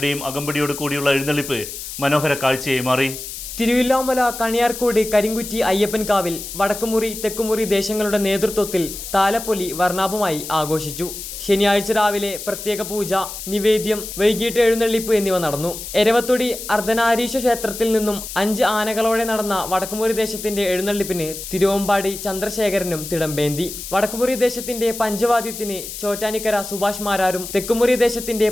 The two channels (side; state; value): left; noise; hiss, 9 dB below the sound